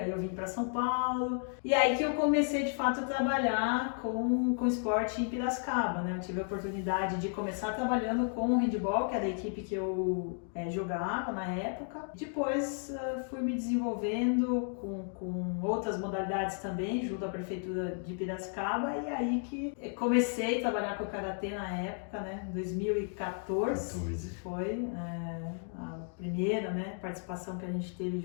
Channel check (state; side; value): silent; right; 56 dB below the other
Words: eu vim para São Paulo e aí que eu comecei de fato a trabalhar com esporte em Piracicaba, né. Eu tive a oportunidade de começar trabalhando com o handball, que era a equipe que eu jogava na época. Depois fui me desenvolvendo com outras modalidades também, junto à prefeitura de Piracicaba, e aí que comecei a trabalhar com o Karatê na época, né, 2014. Foi a primeira, né, participação que a gente teve